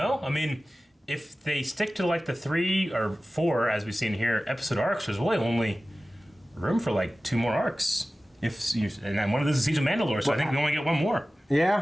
I mean, if they stick to like the 3 or 4, as we've seen here, episode arcs, there's really only room for like 2 more arcs. And then one of those is Siege of Mandalore, so I think we only get 1 more.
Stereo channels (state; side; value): normal; both; correlation 0.96